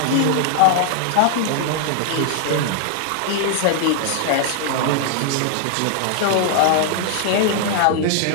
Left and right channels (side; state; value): both; different; correlation 0.00